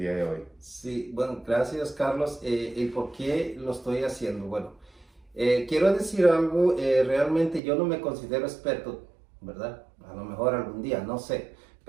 de hoy. Sí, bueno, gracias Carlos. ¿Y por qué lo estoy haciendo? Bueno, quiero decir algo, realmente yo no me considero experto, ¿verdad? A lo mejor algún día, no sé,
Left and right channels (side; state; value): left; drops out; at 7.6 s